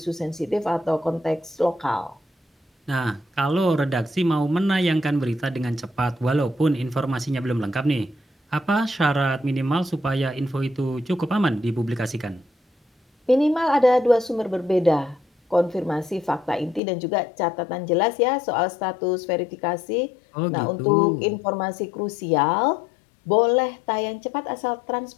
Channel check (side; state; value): right; drops out; at 16.8 s